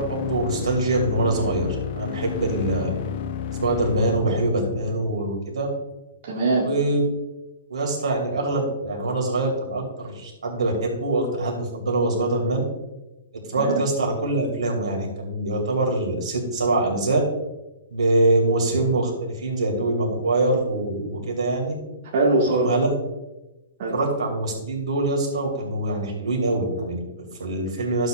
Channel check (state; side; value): inverted; both; correlation -0.49